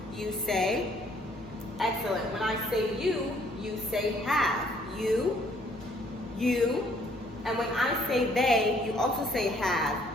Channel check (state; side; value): normal; both; correlation 0.63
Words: You say. Excellent. When I say you, you say have. You. And when I say they, you also say